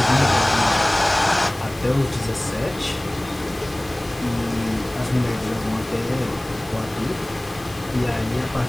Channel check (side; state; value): left; noise; hiss, 22 dB below the sound